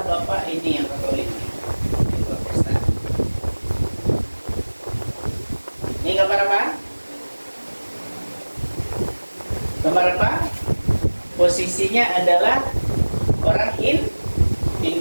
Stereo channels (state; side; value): inverted; both; correlation -1.00